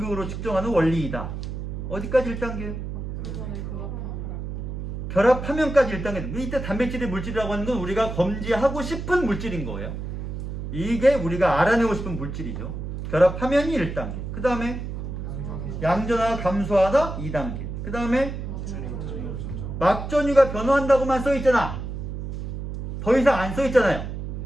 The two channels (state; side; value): noise; right; hum, 6 dB below the sound